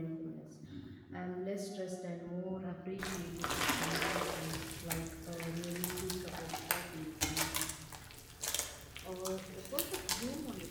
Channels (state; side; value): identical; both; correlation 1.00